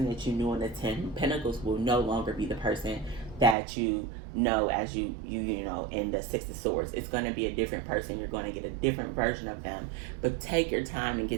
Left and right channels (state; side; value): drops out; left; at 3.6 s